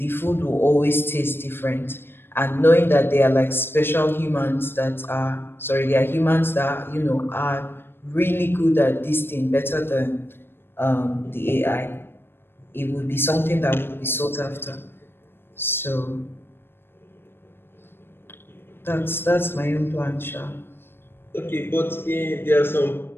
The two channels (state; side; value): late; right; 0.10 ms